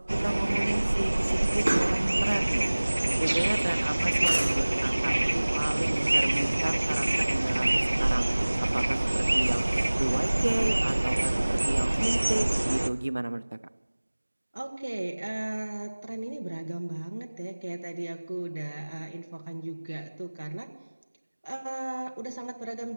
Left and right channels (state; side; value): inverted; both; correlation -1.00